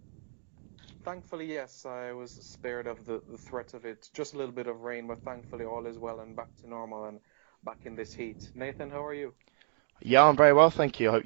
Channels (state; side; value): silent; left; 57 dB below the other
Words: Thankfully, yes, I was spared of the threat of it. Just a little bit of rain, but thankfully all is well and back to normal and back in this heat. Nathan, how are you? Yeah, I'm very well, thank you. I hope